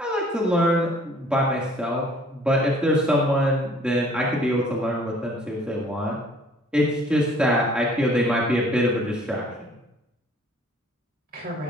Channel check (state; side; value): normal; both; correlation 0.56